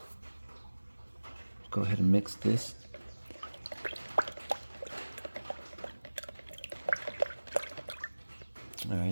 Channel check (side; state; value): both; inverted; correlation -1.00